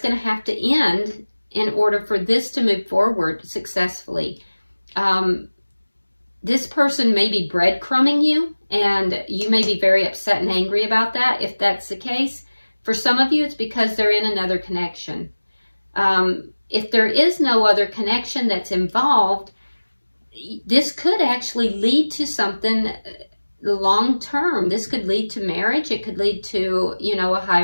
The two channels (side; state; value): both; inverted; correlation -1.00